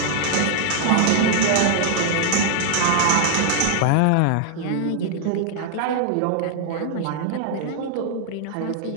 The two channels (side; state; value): both; different; correlation 0.00